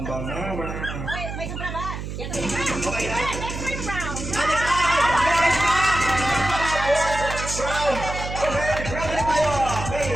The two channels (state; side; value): noise; right; hum, 7 dB below the sound